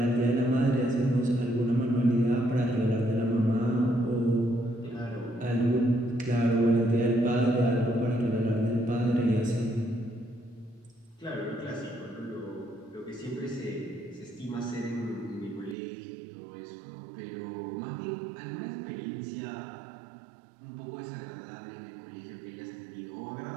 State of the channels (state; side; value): drops out; left; at 15.8 s